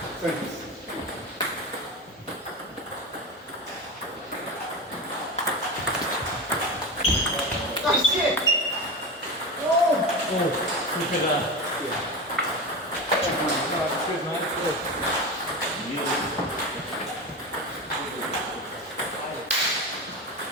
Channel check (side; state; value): both; normal; correlation 0.23